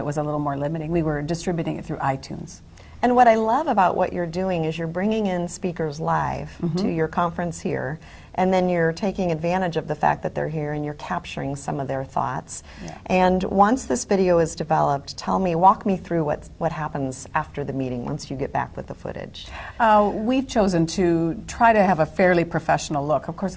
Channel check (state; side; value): identical; both; correlation 1.00